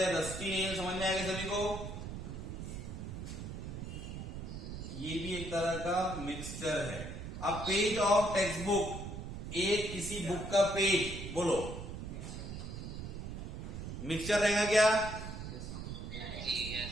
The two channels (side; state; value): right; noise; rumble, 7 dB below the sound